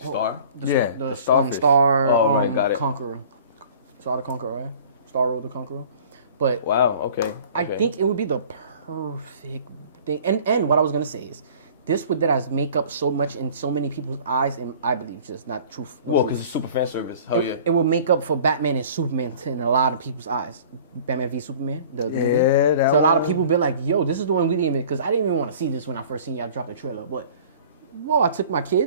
Star? the Starfish. Star right, got it. Conqueror. Star the Conqueror, right? Star Road the Conqueror. But Wow, okay. I think it would be the perfect thing. And what I was gonna say is, this would that make up so much in so many people's eyes, and I believe just not truth. No Well, truth. because it's super fan service. Hell yeah. It would make up for Batman and Superman in a lot of people's eyes. Batman v Superman, the movie. that So a lot of one. people be like, yo, this is the one we didn't even, because I didn't even want to see this when I first seen y'all drop the trailer. But, whoa, I took my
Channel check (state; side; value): inverted; both; correlation -0.47